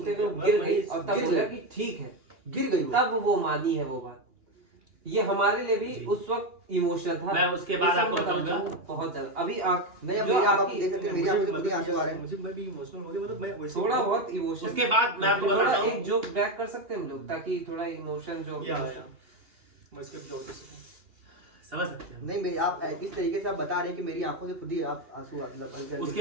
वो गिर गई और तब गिर बोला गई। कि ठीक है, गिर गई वो। तब वो मानी है वो बात। ये हमारे लिए भी जी। उस वक्त इमोशनल था। मैं उसके बाद ये सब आपको बताना बताऊंगा। चाहूंगा, बहुत ज्यादा। अभी आंख नहीं, अब जो मेरी आप आपकी- देख सकते हैं, मेरी आंखों से खुद ही आंसू आ रहे हैं। मुझे मैं भी इमोशनल हो गया, मतलब मैं वैसे थोड़ा बहुत इमोशन। उसके बाद मैं आपको थोड़ा बताता हूँ, एक जोक बैक कर सकते हैं हम लोग, ताकि थोड़ा इमोशन जो या मैं इसके जवाब दे सकता हूँ। समझ सकते हैं। नहीं मेरी आप इस तरीके से आप बता रहे हैं कि मेरी आंखों से खुद ही आप आंसू मतलब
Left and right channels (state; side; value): late; left; 2.8 ms